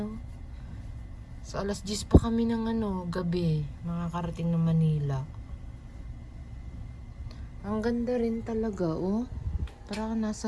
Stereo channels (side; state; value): both; identical; correlation 1.00